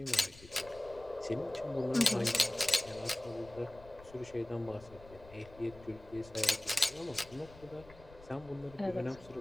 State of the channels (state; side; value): noise; left; rumble, 20 dB below the sound